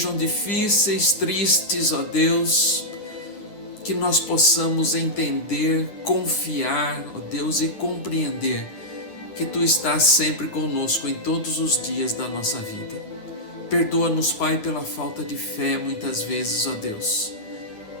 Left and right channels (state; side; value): late; right; 9.8 ms